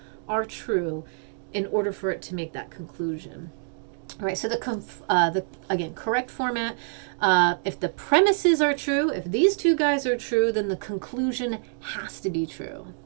are true in order for it to make that conclusion. All right, so again, correct format. If the premises are true, if these two guys are true, then the conclusion has to be true.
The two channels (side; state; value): left; silent; digital silence